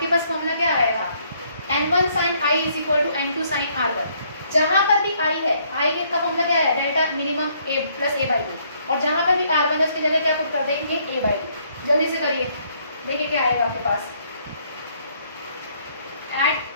पास फॉर्मूला क्या आएगा? N1 sine I is equal to N2 sine R1. जहां पर भी आई है, आई का फॉर्मूला क्या है, delta minimum A plus A by to, और जहां पर भी आर वन है उसकी जगह क्या पुट कर देंगे, ए बाई टू। जल्दी से करिए, देखिए क्या आएगा आपके पास। एट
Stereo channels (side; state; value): both; inverted; correlation -0.67